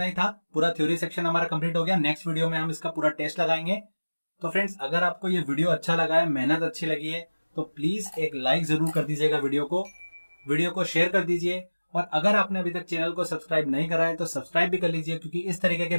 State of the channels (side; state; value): both; inverted; correlation -1.00